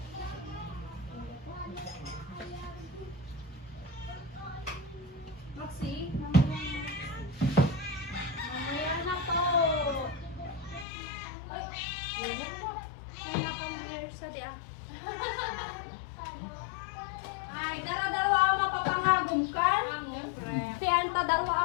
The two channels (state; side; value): drops out; right; at 10.9 s